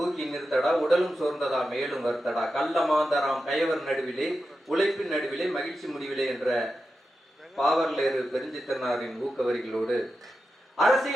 நிறுத்தடா, உடலும் சோர்ந்ததா மேலும் வருத்தடா, கள்ளமாந்தராம் கயவர் நடுவிலே உழைப்பின் நடுவிலே மகிழ்ச்சி முடிவிலே என்ற பாவர்லேறு பெருஞ்சித்திரனாரின் ஊக்க வரிகளோடு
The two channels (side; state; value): both; normal; correlation 0.90